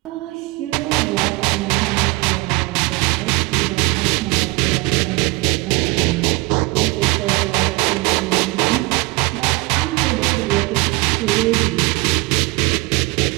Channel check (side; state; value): left; quieter; 24.0 dB